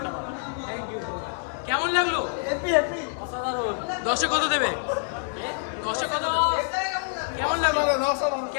Thank you so much. কেমন লাগলো? হ্যাপি হ্যাপি, অসাধারণ। 10-এ কত দেবে? 10-এ কত দেবে? কেমন লাগলো?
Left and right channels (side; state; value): right; silent; 61 dB below the other